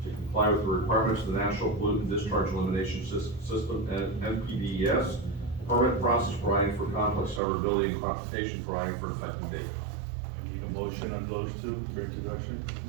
to comply with the requirements of the National Pollutant Discharge Elimination System, and NPDES, permit process providing for conflict severability and classification providing for effective date. I need a motion on those two for introduction.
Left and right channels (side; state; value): left; drops out; at 7.4 s